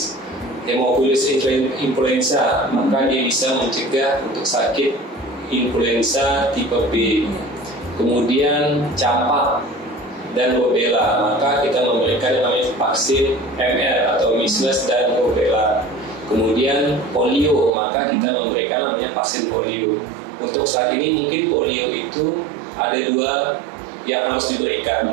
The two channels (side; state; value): left; drops out; at 17.7 s